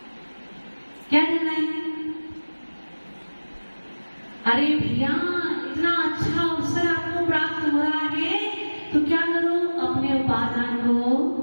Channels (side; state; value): both; inverted; correlation -1.00